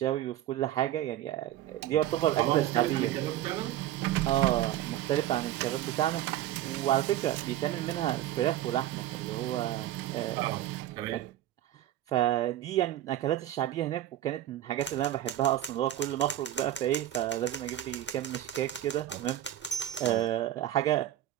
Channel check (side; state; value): left; quieter; 12.9 dB